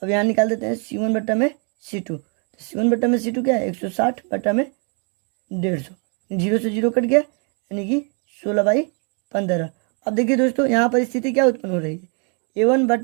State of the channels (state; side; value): quieter; left; 38.2 dB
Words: अब यहाँ निकाल देते हैं C1 बट्टा में C2। तो C1 बट्टा में C2 क्या है 160 बट्टा में 150, 0 से 0 कट गया, यानी कि 16/15। अब देखिए दोस्तों यहाँ पर स्थिति क्या उत्पन्न हो रही है, A1